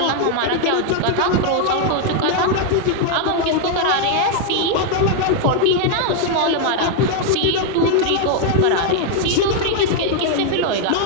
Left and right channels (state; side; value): different; both; correlation 0.00